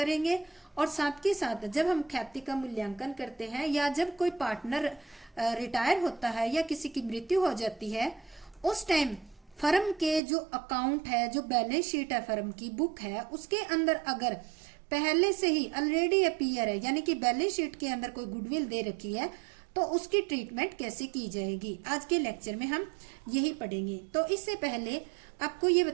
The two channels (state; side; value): drops out; left; at 10.2 s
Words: और साथ के साथ जब हम ख्याति का मूल्यांकन करते हैं या जब कोई पार्टनर रिटायर होता है या किसी की मृत्यु हो जाती है उस टाइम फर्म के जो अकाउंट है, जो बैलेंस शीट है, फर्म की बुक है, उसके अंदर अगर पहले से ही ऑलरेडी अपीयर है यानी कि बैलेंस शीट के अंदर कोई गुडविल दे रखी है तो उसकी ट्रीटमेंट कैसे की जाएगी, आज के लेक्चर में हम यही पढ़ेंगे। तो इससे पहले आपको ये